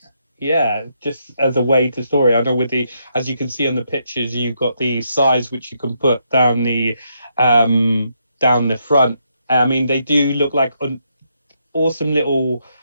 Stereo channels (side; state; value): both; inverted; correlation -0.78